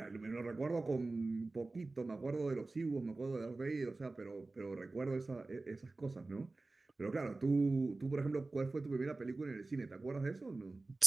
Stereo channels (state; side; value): quieter; left; 3.3 dB